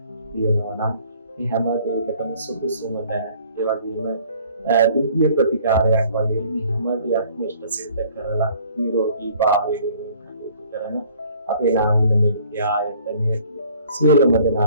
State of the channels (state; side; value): inverted; both; correlation -0.56